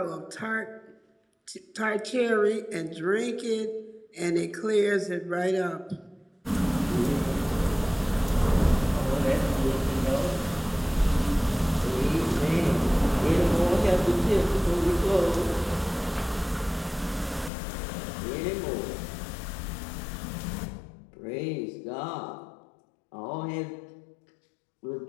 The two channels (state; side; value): drops out; right; at 17.5 s